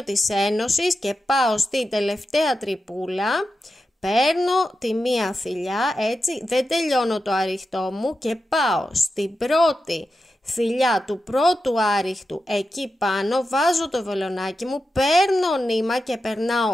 της ένωσης και πάω στην τελευταία τρυπούλα. Παίρνω τη μία θηλιά, έτσι, δεν τελειώνω το άριχτό μου και πάω στην πρώτη θηλιά του πρώτου άριχτου, εκεί πάνω βάζω το βελονάκι μου, παίρνω νήμα και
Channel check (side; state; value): both; normal; correlation 0.90